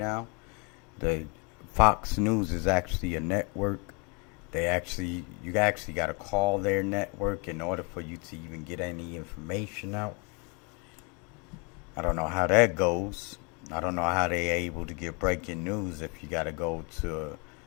The Fox News is actually a network. You actually got to call their network in order for you to even get any information out. I don't know how that goes. I don't know how they're able to get breaking news if you got to go to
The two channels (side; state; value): right; quieter; 32.9 dB